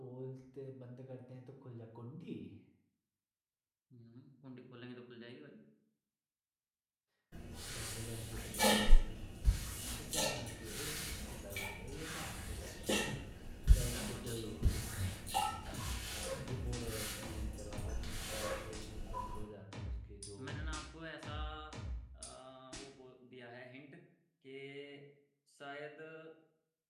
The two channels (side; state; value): both; identical; correlation 1.00